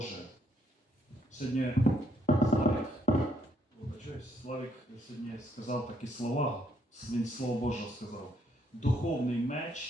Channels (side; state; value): both; normal; correlation 0.73